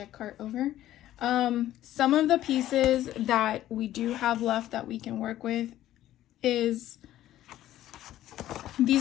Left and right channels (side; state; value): right; quieter; 13.4 dB